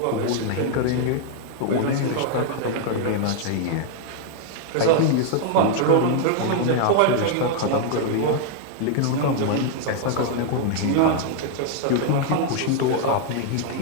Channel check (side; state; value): both; different; correlation 0.00